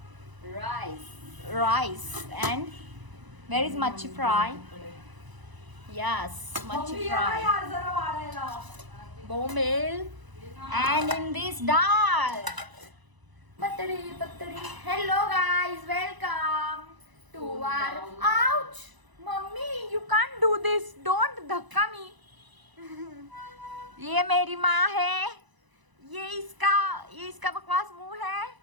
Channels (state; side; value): late; left; 1.0 ms